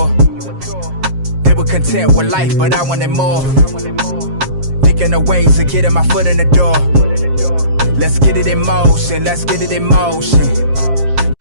They were content with life, but I wanted more. Thinking of ways of getting my foot in the door. Let's get it in motion, let's get it in motion.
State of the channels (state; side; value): late; left; 7.5 ms